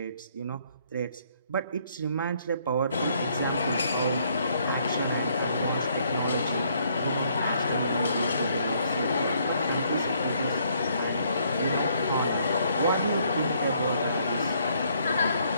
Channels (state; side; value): inverted; both; correlation -0.68